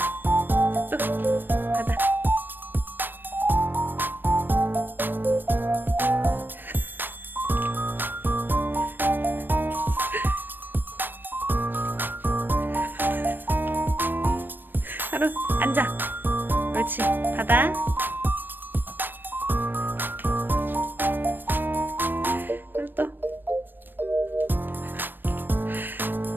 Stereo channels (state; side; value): late; left; 0.094 ms